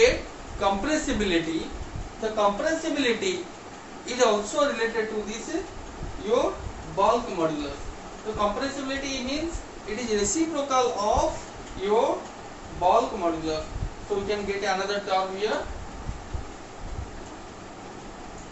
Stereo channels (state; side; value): identical; both; correlation 1.00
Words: compressibility. The compressibility is also related to this your bulk modulus. So compressibility means it is reciprocal of your bulk modulus. So we can get another term here,